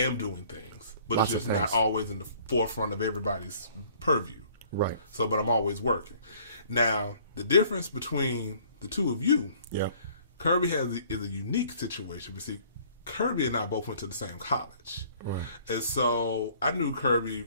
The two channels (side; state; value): both; inverted; correlation -0.56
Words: doing things, but Lots it's just of not things. always in the forefront of everybody's purview. Right. So, but I'm always working. Now, the difference between the two of you, Yeah. Kirby is a unique situation. But see, Kirby and I both went to the same college. Right. And so I knew Kirby